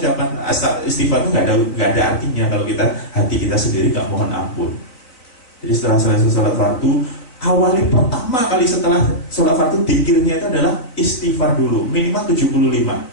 istighfar itu nggak ada artinya kalau hati kita sendiri nggak mohon ampun. Jadi setelah selesai sholat fardu, awali pertama kali setelah sholat fardu, dzikirnya itu adalah istighfar dulu, minimal 75.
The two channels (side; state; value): right; late; 4.0 ms